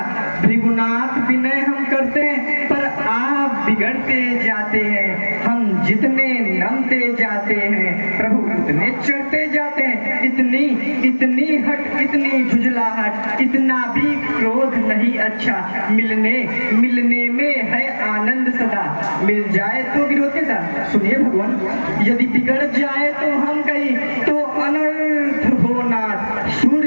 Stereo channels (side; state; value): both; inverted; correlation -1.00